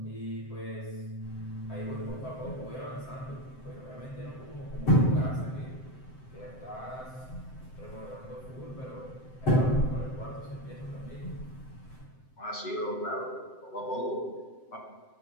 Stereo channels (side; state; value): right; late; 7.7 ms